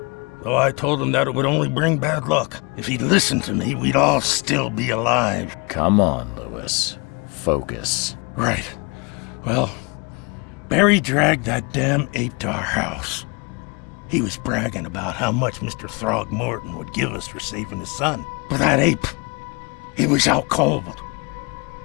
Though I told him that it would only bring bad luck. If he'd listened to me, we'd all still be alive. Come on, Lewis. Focus. Right. Well, Barry dragged that damn ape to our house. He was bragging about how much Mr. Throgmorton would give us for saving his son. But that ape, he was out cold.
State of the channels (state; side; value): quieter; right; 29.9 dB